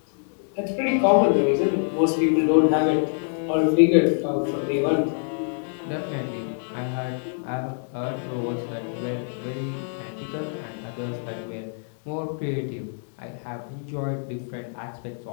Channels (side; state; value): right; silent; digital silence